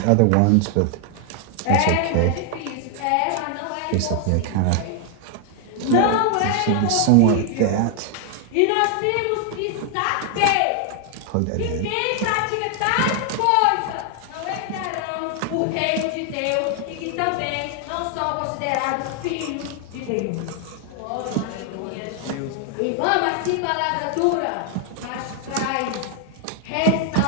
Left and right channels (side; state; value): both; different; correlation 0.00